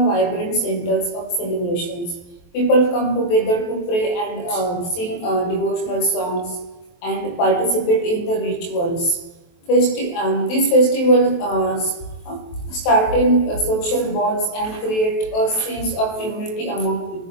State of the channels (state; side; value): late; right; 23 ms